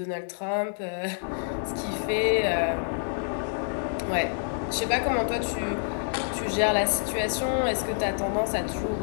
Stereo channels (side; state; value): right; silent; digital silence